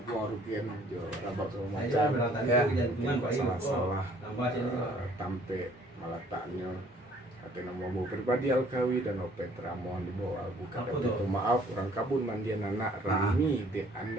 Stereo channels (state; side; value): normal; both; correlation 0.58